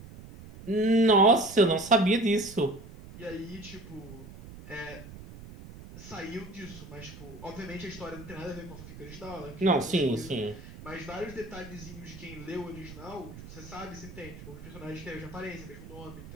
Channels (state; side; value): noise; right; rumble, 15 dB below the sound